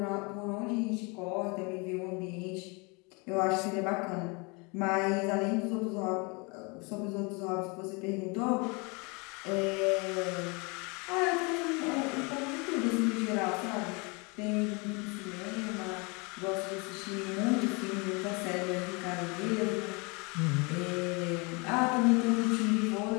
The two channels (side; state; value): right; quieter; 29.9 dB